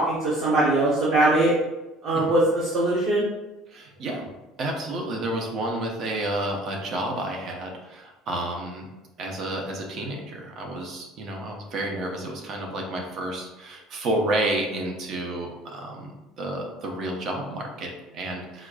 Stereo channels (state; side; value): normal; both; correlation 0.52